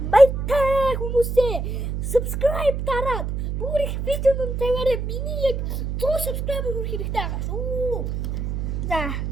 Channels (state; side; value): noise; right; hum, 2 dB below the sound